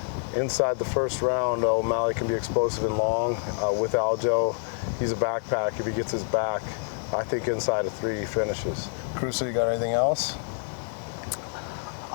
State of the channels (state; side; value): silent; right; 60 dB below the other